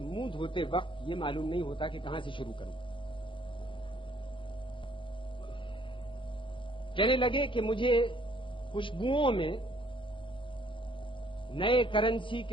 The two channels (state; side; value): late; right; 0.25 ms